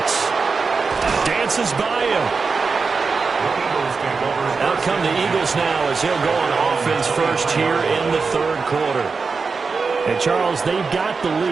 Dances by him. Out come the Eagles now as he'll go on offense first here in the third quarter. And Charles, they've got the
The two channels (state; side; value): quieter; left; 4.7 dB